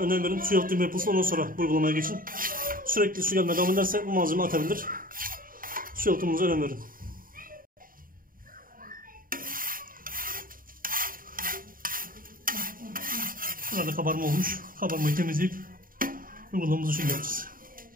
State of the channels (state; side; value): late; left; 0.41 ms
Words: önem verin. Su yalıtımı yapılsın, ondan sonra bu uygulamaya geçin. Sürekli su gelmeye devam ederse bu malzeme atabilir. Su yalıtımınıza önem verin. Burada kabarma olmuş. Kabarmayı temizleyip uygulamamızı şimdi yapacağız.